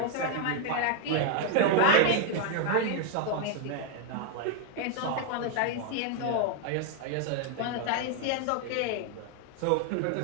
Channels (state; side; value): different; both; correlation 0.01